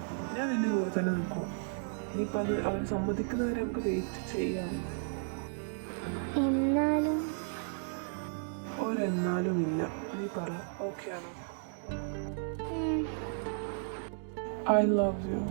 നിന്റെ കൂടെ തന്നെ നിൽക്കും. ഇനിയിപ്പോൾ അത് അവർ സമ്മതിക്കുന്നവരെ നമുക്ക് വെയിറ്റ് ചെയ്യാം. എന്നാലും ഒരെന്നാലും ഇല്ല. നീ പറ, ഓക്കെ ആണോ? I love you.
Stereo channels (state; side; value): silent; left; digital silence